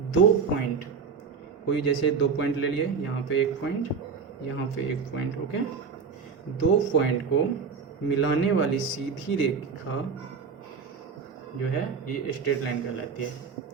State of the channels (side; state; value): left; quieter; 5.7 dB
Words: दो पॉइंट, कोई जैसे दो पॉइंट ले लिए, यहाँ पे एक पॉइंट, यहाँ पे एक पॉइंट, ओके। दो पॉइंट को मिलाने वाली सीधी रेखा जो है ये स्ट्रेट लाइन कहलाती है।